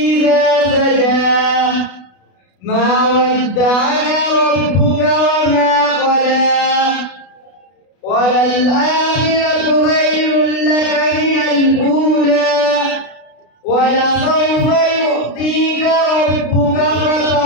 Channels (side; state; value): right; late; 32 ms